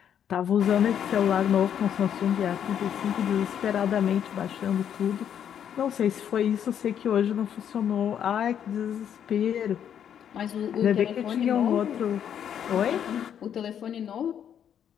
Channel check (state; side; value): quieter; right; 9.0 dB